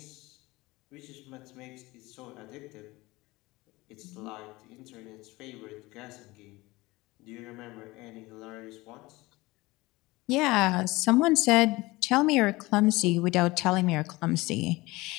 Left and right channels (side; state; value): right; quieter; 21.0 dB